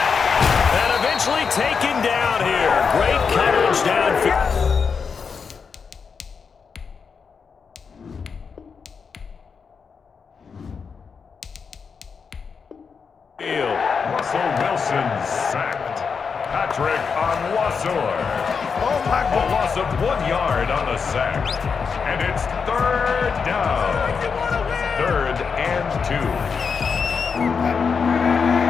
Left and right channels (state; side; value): quieter; right; 5.8 dB